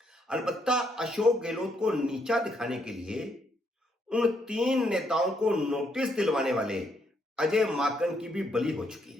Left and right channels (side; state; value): both; normal; correlation 0.74